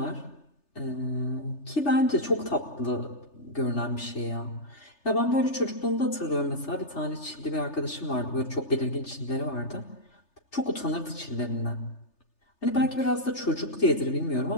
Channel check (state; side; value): late; right; 3.3 ms